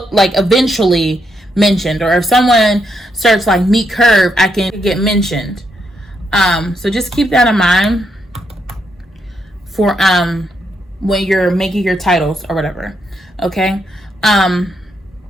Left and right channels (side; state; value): both; normal; correlation 0.78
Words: mentioned. Or if someone searches like meat curve, I can get mentioned. So just keep that in mind for when you're making your titles or whatever. Okay.